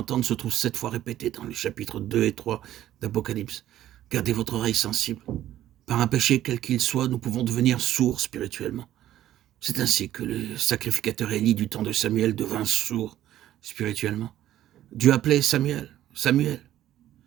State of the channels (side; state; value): left; quieter; 12.8 dB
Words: se trouve 7 fois répétée dans les chapitres 2 et 3 d'Apocalypse. Gardez votre oreille sensible. Par un péché quel qu'il soit, nous pouvons devenir sourds spirituellement. C'est ainsi que le sacrificateur Élie du temps de Samuel devint sourd spirituellement. Dieu appelait Samuel, Samuel.